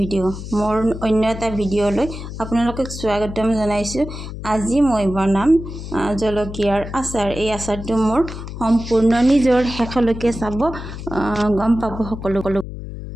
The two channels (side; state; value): left; noise; hum, 9 dB below the sound